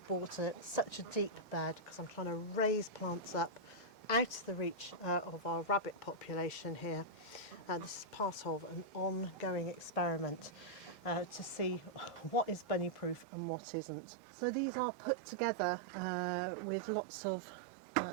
bought such a deep bed, because I'm trying to raise plants up out of the reach of our rabbit population here. This is part of an ongoing experiment to see what is bunny proof and what isn't. So these are put together with lots of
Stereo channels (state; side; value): drops out; left; at 13.2 s